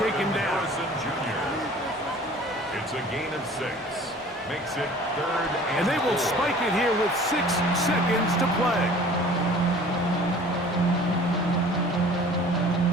down. Harrison Jr. It's a gain of 6. Makes it third And they will spike it here with 6 seconds to play.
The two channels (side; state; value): both; normal; correlation 0.47